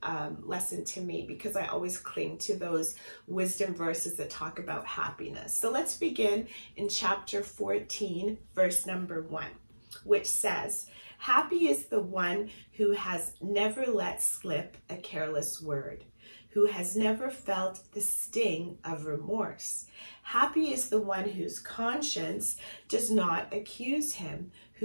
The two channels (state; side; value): inverted; both; correlation -1.00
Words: lesson to me, because I always cling to those wisdom verses that talk about happiness. So let's begin in chapter 14, verse number 1, which says, happy is the one who has never let slip a careless word, who has never felt the sting of remorse. Happy is the one whose conscience does not accuse him,